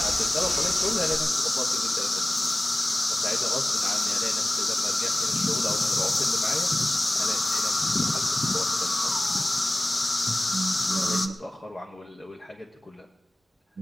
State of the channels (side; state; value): both; normal; correlation 0.96